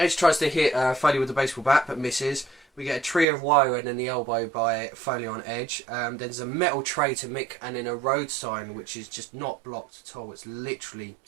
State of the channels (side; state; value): left; drops out; at 3.2 s